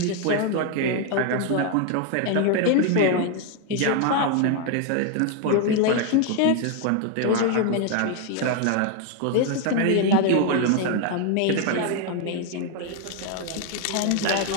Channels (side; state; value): both; different; correlation 0.01